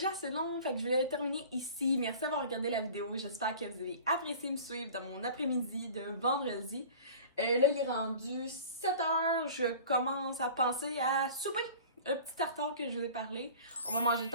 assez long, fait que je vais le terminer ici. Merci d'avoir regardé la vidéo. J'espère que vous avez apprécié me suivre dans mon après-midi de vendredi. Là, il est rendu 7h. Je commence à penser à souper. Un petit tartare que je vous ai parlé. On va manger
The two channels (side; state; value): both; inverted; correlation -0.42